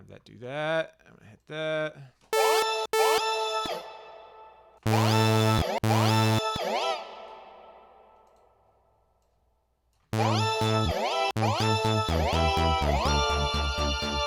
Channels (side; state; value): both; identical; correlation 1.00